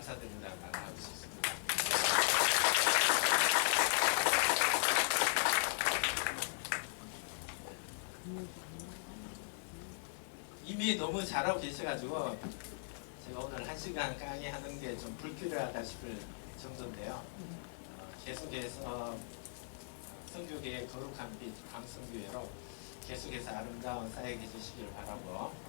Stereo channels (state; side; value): silent; right; digital silence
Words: 말 하고 싶습니다. 이미 너무 잘하고 계셔가지고 제가 오늘 1시간 강의하는 게 좀 불필요하다 싶을 정도인데요. 계속해서 선교계의 거룩한 빛 광성교회로 계속해서 아름다운 사역해 주시기를 바라고